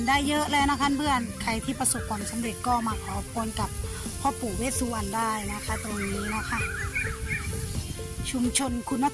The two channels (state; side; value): identical; both; correlation 1.00